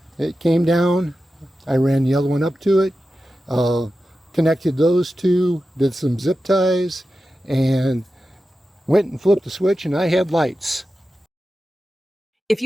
It came down. I ran the other one up to it. Connected those two, did some zip ties, and went and flipped the switch, and I had lights. If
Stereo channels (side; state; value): both; normal; correlation 0.92